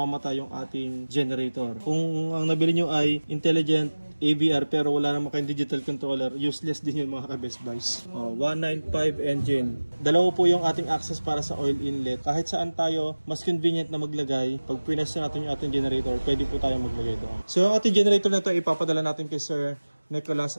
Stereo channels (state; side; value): inverted; both; correlation -1.00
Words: yung ating generator. Kung ang nabili nyo ay intelligent AVR pero wala naman kayong digital controller, useless din yun mga ka-Best Buys. 195 engine. Dalawa po yung ating access para sa oil inlet. Kahit saan tayo mas convenient na maglagay, pag pinas natin yung ating generator, pwede po tayo maglagay doon. So yung ating generator na ito ipapadala natin kay Sir Nicholas